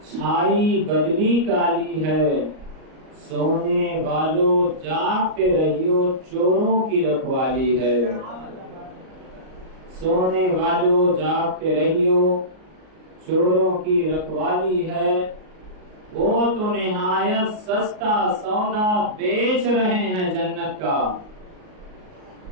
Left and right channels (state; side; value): late; left; 38 ms